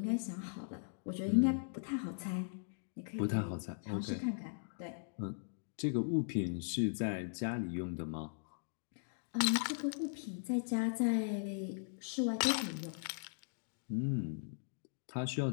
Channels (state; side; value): silent; right; digital silence